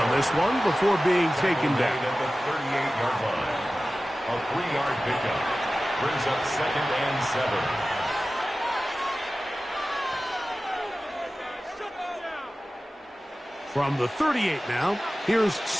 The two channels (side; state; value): both; normal; correlation 0.96